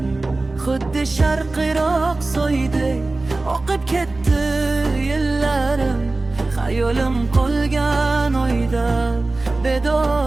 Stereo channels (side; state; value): left; quieter; 3.1 dB